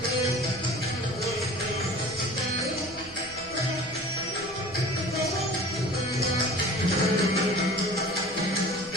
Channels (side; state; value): right; noise; rumble, 20 dB below the sound